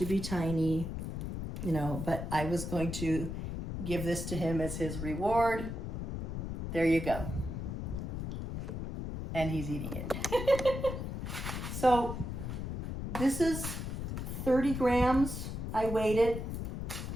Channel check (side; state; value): left; noise; rumble, 5 dB below the sound